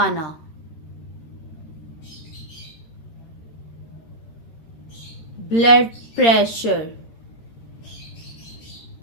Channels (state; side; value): late; right; 13 ms